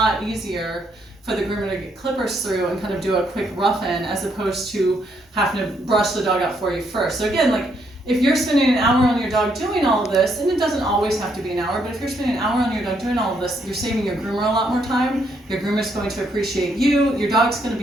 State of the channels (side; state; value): both; normal; correlation 0.74